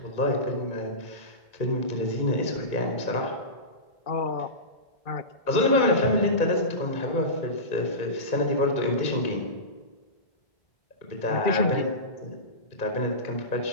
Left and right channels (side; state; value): right; late; 2.2 ms